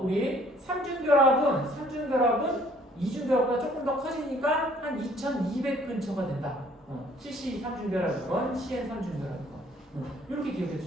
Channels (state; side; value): normal; both; correlation 0.59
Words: 우리 삼중결합은 이중결합보다 조금 더 커지니까 한 2200 근처가 된다. CC 삼중결합이건 CN 삼중결합이건 이렇게 기억해